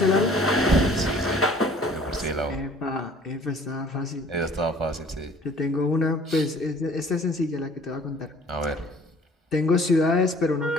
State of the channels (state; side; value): normal; both; correlation 0.53